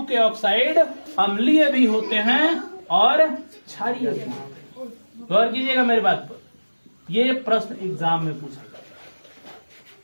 के ऑक्साइड अम्लीय भी होते हैं और क्षारीय भी होते हैं। गौर कीजिएगा मेरी बात पर, ये प्रश्न एग्जाम में पूछा जाता है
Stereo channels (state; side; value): inverted; both; correlation -1.00